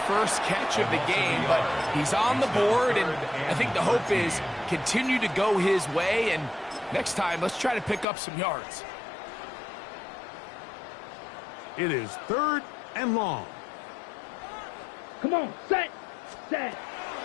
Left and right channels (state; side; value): drops out; right; at 8.1 s